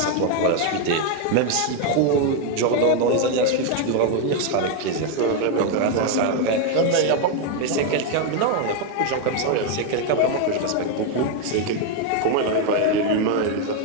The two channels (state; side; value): different; both; correlation 0.01